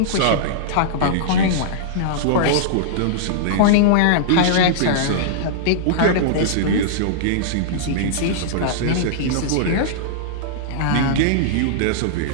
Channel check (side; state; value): both; different; correlation -0.02